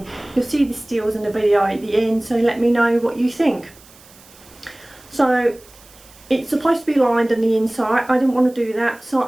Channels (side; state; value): right; noise; hiss, 25 dB below the sound